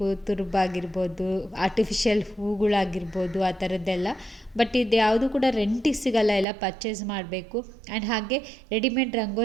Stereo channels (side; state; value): left; drops out; at 6.5 s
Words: ತುರುಬಾಗಿರ್ಬೋದು, ಆರ್ಟಿಫಿಷಿಯಲ್ ಹೂಗಳಾಗಿರ್ಬೋದು, ಆ ಥರದ್ದೆಲ್ಲ. ಬಟ್ ಇದು ಯಾವುದು ಕೂಡ ರೆಂಟಿಗೆ ಸಿಗಲ್ಲ, ಎಲ್ಲ ಪರ್ಚೇಸ್ ಮಾಡಬೇಕು. ಆ್ಯಂಡ್ ಹಾಗೆ ರೆಡಿಮೇಡ್